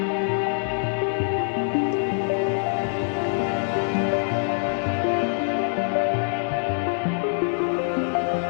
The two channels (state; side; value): silent; right; digital silence